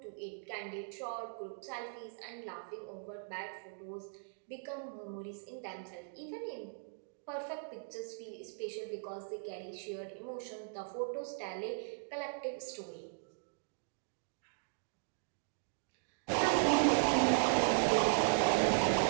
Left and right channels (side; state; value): left; silent; digital silence